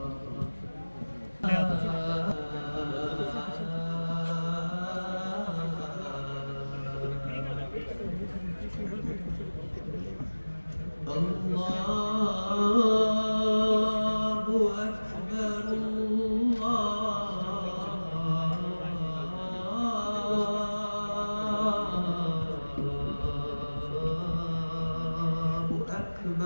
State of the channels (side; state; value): both; inverted; correlation -1.00